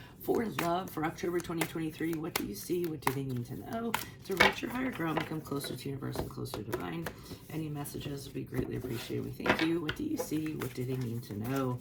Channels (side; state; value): both; identical; correlation 1.00